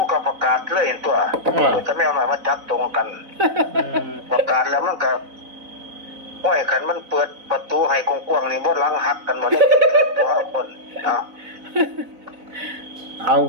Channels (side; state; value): left; late; 4.0 ms